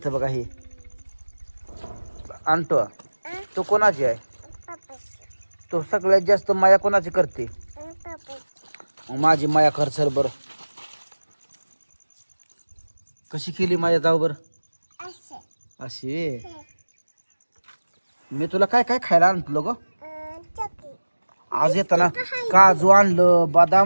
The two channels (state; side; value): inverted; both; correlation -1.00